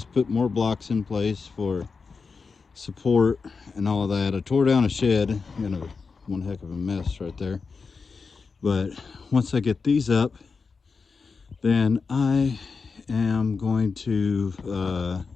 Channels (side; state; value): right; quieter; 4.9 dB